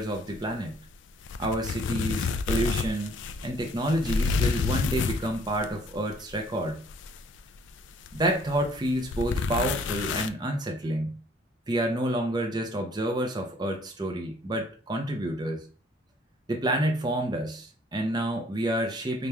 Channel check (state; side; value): normal; both; correlation 0.60